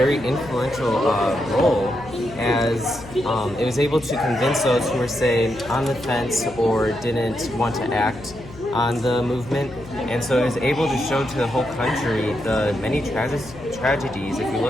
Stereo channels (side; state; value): left; noise; hum, 17 dB below the sound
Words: influential role, as it was able to convince those who were, say, on the fence or didn't want to act on the movement. And so it was able to show to the whole country the many tragedies. If you